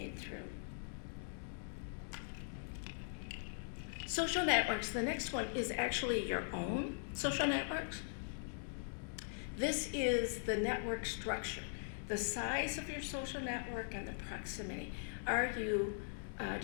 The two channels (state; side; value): silent; right; digital silence